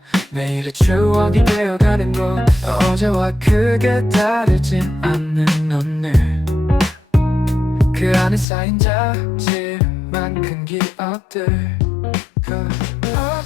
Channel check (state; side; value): drops out; right; at 8.5 s